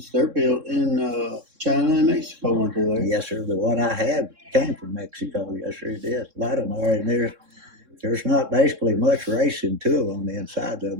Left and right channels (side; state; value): left; late; 3.7 ms